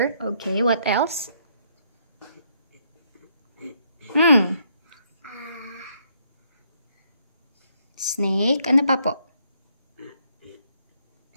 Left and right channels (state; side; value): inverted; both; correlation -0.71